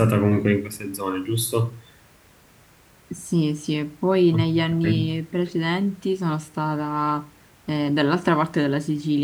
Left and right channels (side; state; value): both; identical; correlation 1.00